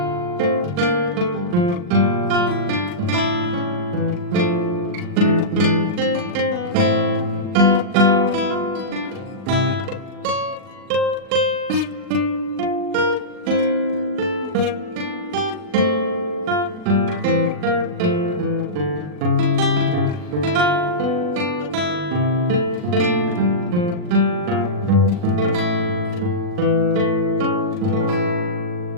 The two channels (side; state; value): left; late; 40 ms